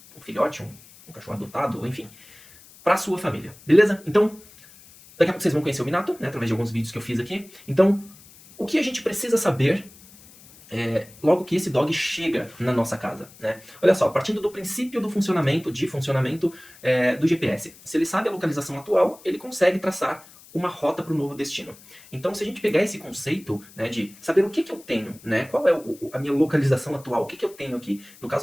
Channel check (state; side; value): noise; left; hiss, 23 dB below the sound